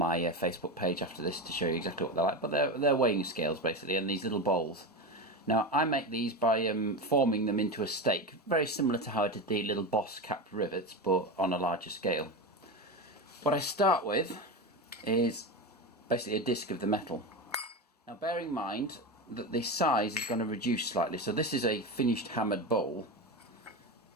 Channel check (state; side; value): normal; both; correlation 0.20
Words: Facebook page after this to show you exactly what they're like. But they're weighing scales basically, and these little bowls. Now I make these by forming them into a stake, very similar to how I did the little Boss capped rivets, but on a larger scale. What I start with is basically a disc of the metal. Now bearing in mind that the size is going to reduce slightly, so this is a finished hammered bowl,